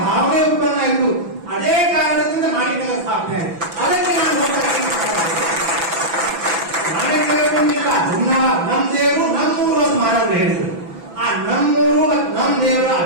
ಉತ್ಪನ್ನ ಆಯ್ತು. ಅದೇ ಕಾರಣದಿಂದ ಮಾಣಿಕ್ಯರ ಸ್ಥಾಪನೆ ಆಯ್ತು. ಅದಕ್ಕೆ ನಾನು ಮಾಣಿಕ್ಯರಿಲ್ಲ ನಮ್ ದೇವರು ನಮ್ಮೂರು ಅಂತ ಮಹಾರಾಜರು ಹೇಳಿದ್ರು. ಆ ನಮ್ಮೂರು ಮತ್ತು ನಮ್ ದೇವರ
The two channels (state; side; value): late; left; 6.0 ms